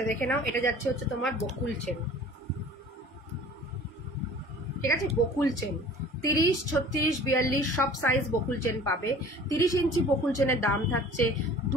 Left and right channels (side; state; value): both; normal; correlation 0.46